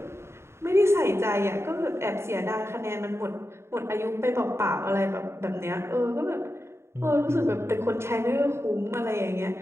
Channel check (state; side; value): late; left; 0.13 ms